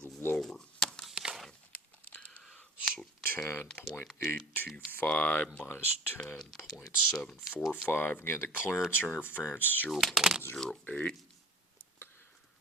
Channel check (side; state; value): both; normal; correlation 0.43